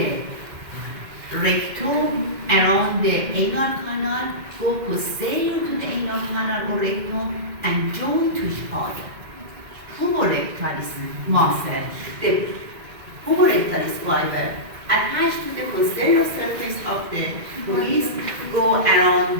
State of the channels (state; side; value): late; left; 2.1 ms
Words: rectum, around the anal canal, go posterior to the anal canal or rectum, and join to each other. Puborectalis muscle, the puborectalis fiber attached to the posterior surface of the pubis, go around